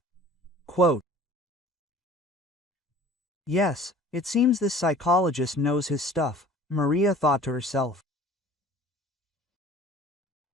Quote, "Yes, it seems this psychologist knows his stuff," Maria thought to herself.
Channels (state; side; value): normal; both; correlation 0.47